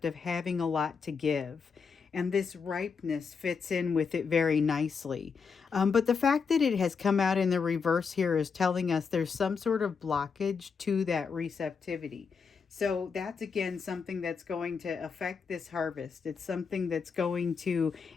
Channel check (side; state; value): right; quieter; 5.6 dB